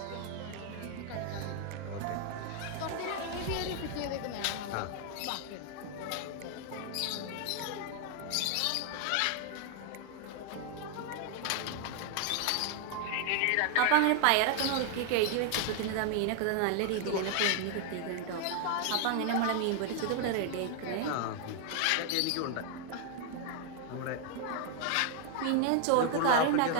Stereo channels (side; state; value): both; different; correlation 0.00